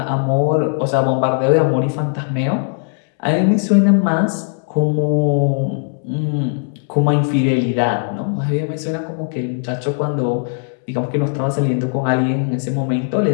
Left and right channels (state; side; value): silent; right; 67 dB below the other